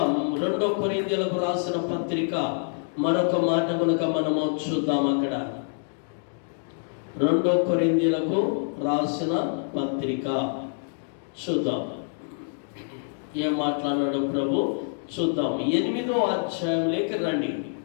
2 కొరింథీయులకు రాసిన పత్రిక మరొక మాట కనుక మనము చూద్దాం. అక్కడ 2 కొరింథీయులకు రాసిన పత్రిక చూద్దాం ఏం మాట్లాడాడు ప్రభు. చూద్దాం 8వ అధ్యాయంలోకి రండి.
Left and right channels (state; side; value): silent; right; digital silence